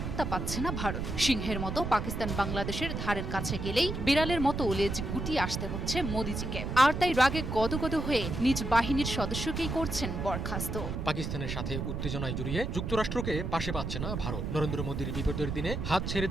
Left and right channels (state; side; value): noise; right; rumble, 3 dB below the sound